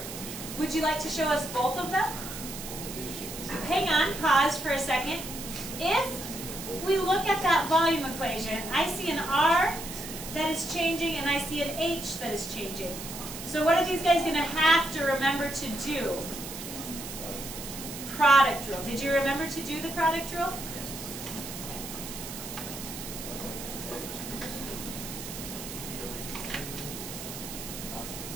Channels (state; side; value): noise; right; hiss, 9 dB below the sound